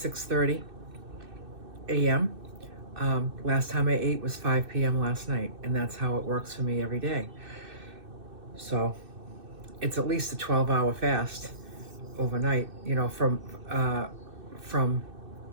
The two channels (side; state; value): left; late; 2.6 ms